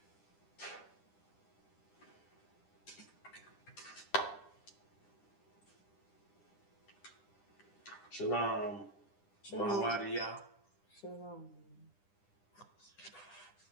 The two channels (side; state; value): right; late; 10 ms